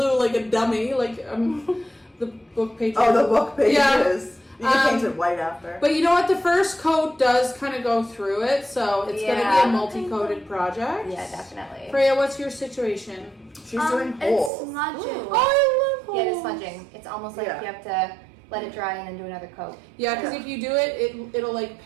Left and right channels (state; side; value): drops out; left; at 14.5 s